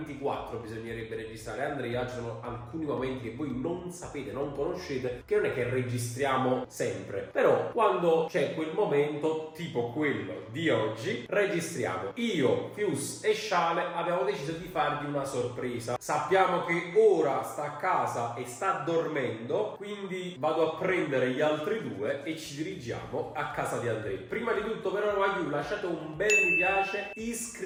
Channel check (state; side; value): identical; both; correlation 1.00